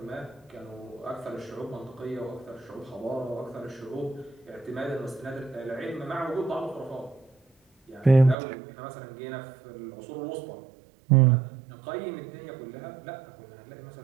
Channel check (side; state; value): left; drops out; at 8.3 s